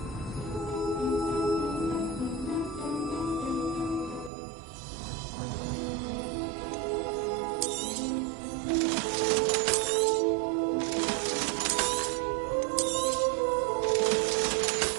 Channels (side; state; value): left; drops out; at 4.3 s